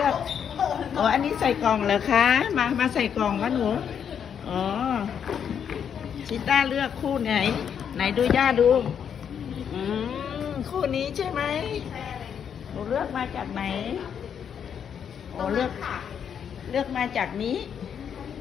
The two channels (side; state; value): right; quieter; 8.0 dB